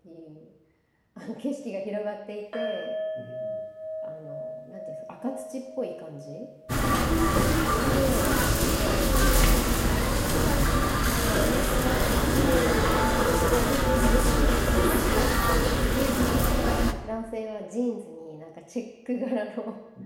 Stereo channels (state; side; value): identical; both; correlation 1.00